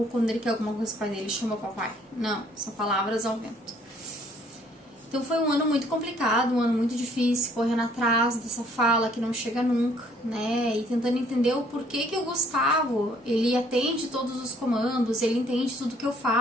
quando ele quer alguma coisa, pai dele chama papai. Não, são palavras ao vento. Então, foi um ano muito complicado, um ano muito difícil, correndo atrás dessa fala que não chega nunca, né? E tentando entender o porquê que o Gustavo, ele atende todos os comandos, ele entende tudo que eu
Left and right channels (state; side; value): normal; both; correlation 0.61